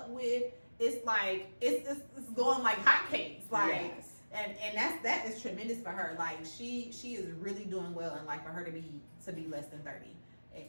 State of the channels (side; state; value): both; inverted; correlation -1.00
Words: with, it's like it's going like hotcakes. Yes. And that is tremendous for her. Like she is really doing well, and for her to be less than 30.